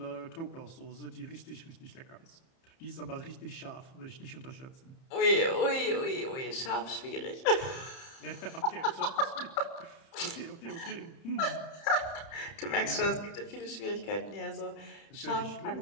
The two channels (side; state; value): right; late; 30 ms